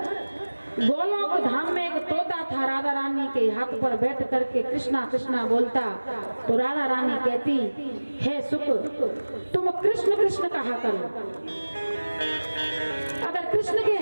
गोलोक धाम में एक तोता था, राधा रानी के हाथ पर बैठ करके कृष्णा कृष्णा बोलता। तो राधा रानी कहती, हे सुख, तुम कृष्ण कृष्ण कहा करो। अगर कृष्ण के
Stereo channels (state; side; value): inverted; both; correlation -1.00